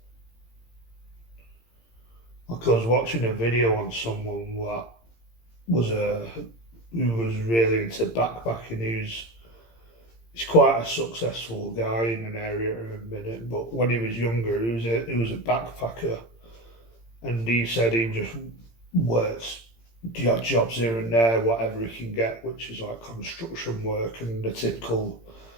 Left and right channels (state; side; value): late; right; 17 ms